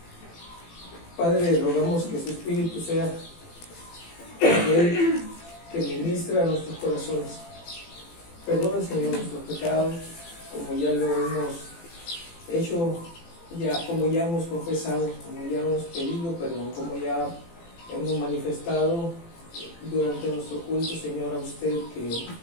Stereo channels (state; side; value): late; right; 18 ms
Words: Padre, rogamos que su Espíritu sea aquel que ministra a nuestros corazones. Perdona, Señor, nuestros pecados, como ya lo hemos hecho, como ya hemos confesado, como ya hemos pedido perdón, como ya hemos manifestado durante nuestro culto, Señor, a usted que